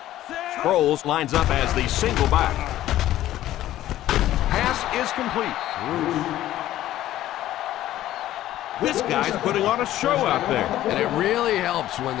Sproles lines up as the single back. Pass is complete. This guy's putting on a show out there. And it really helps when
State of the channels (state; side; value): quieter; right; 13.7 dB